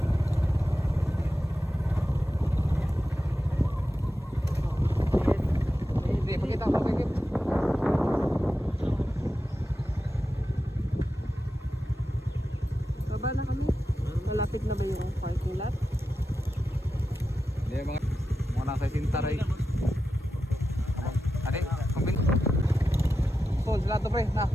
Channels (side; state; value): both; normal; correlation 0.91